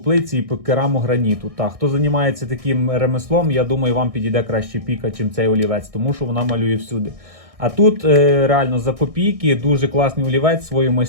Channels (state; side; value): late; left; 1.6 ms